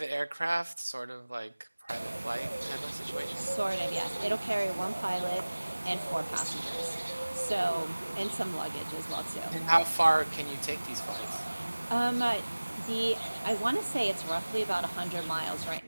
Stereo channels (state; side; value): inverted; both; correlation -1.00